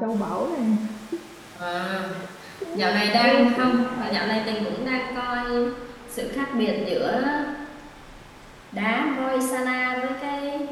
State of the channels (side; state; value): both; identical; correlation 1.00